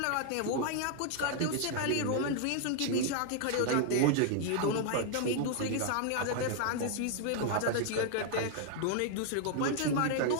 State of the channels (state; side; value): different; both; correlation 0.00